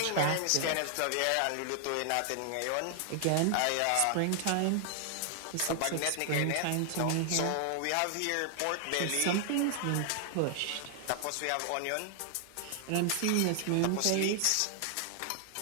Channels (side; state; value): both; different; correlation 0.00